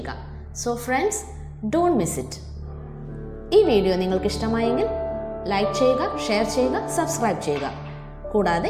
So friends, don't miss it. ഈ വീഡിയോ നിങ്ങൾക്ക് ഇഷ്ടമായെങ്കിൽ ലൈക്ക് ചെയ്യുക, ഷെയർ ചെയ്യുക, സബ്സ്ക്രൈബ് ചെയ്യുക. കൂടാതെ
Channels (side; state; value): both; identical; correlation 1.00